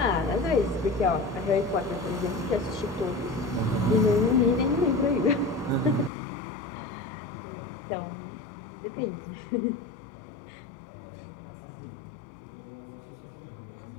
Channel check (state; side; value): drops out; right; at 6.1 s